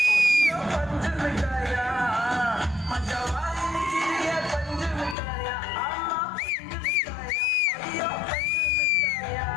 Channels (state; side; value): drops out; right; at 5.2 s